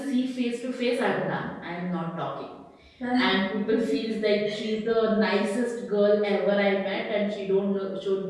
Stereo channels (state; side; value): identical; both; correlation 1.00